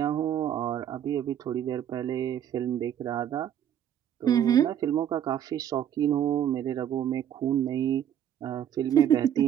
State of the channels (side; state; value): left; quieter; 10.0 dB